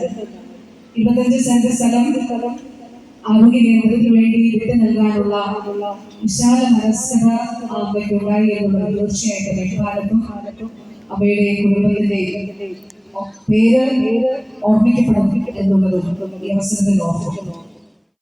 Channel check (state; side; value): identical; both; correlation 1.00